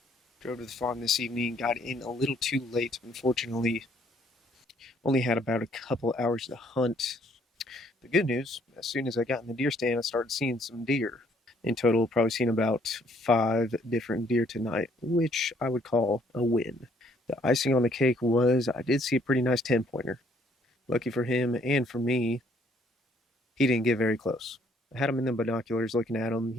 Drove to the farm this evening, got in a little too late, unfortunately. Only had about a couple hours to hunt. The good news, as soon as I got in the deer stand, I started seeing some deer. In total, probably seen about 5 different deer tonight, which I would call a win. The icing on the cake was I did see a pretty nice 10-pointer. Lucky for him and for me, he didn't get very close. I had him in the binoculars looking at him.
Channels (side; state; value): both; normal; correlation 0.65